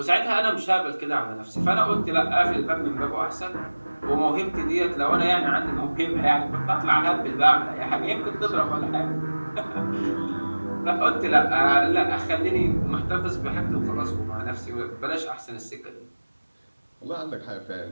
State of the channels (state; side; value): inverted; both; correlation -1.00